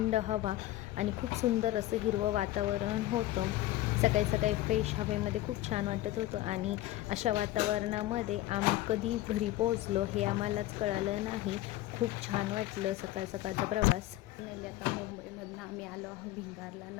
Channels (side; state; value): right; quieter; 15.8 dB